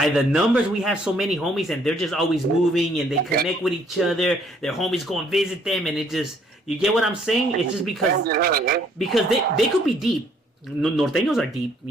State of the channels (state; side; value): normal; both; correlation 0.64